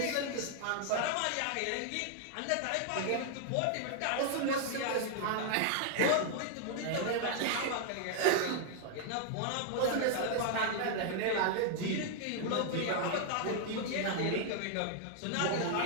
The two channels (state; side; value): different; both; correlation 0.00